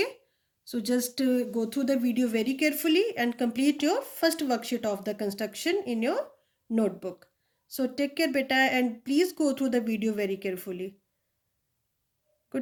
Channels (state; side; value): identical; both; correlation 1.00